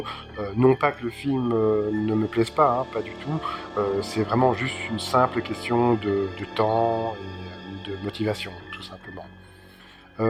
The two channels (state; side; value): identical; both; correlation 1.00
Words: Non pas que le film ne me plaise pas, hein, pas du tout. C'est vraiment juste une simple question de temps et de motivation, tout simplement.